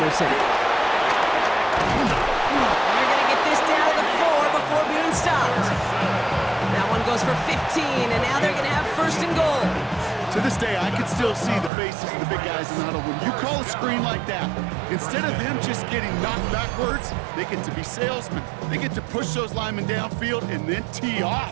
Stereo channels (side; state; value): left; drops out; at 11.7 s